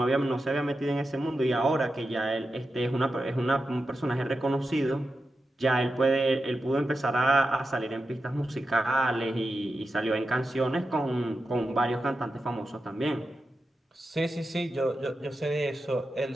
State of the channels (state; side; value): normal; both; correlation 0.90